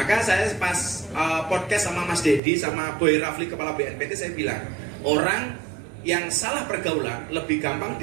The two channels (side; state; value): left; drops out; at 2.4 s